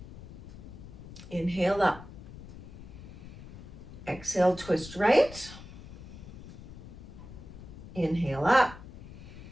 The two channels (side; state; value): left; noise; rumble, 14 dB below the sound